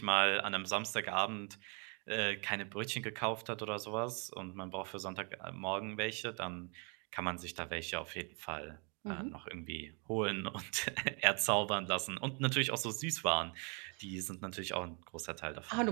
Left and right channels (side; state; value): left; quieter; 36.1 dB